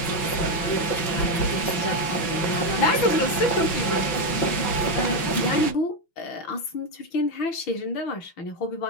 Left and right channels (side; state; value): right; late; 6.0 ms